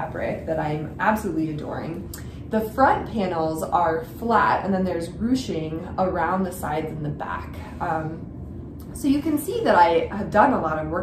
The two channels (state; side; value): identical; both; correlation 1.00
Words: that I'm absolutely adoring. The front panels are flat, and then there's ruching around the sides and the back. So you can see that I have done a lot of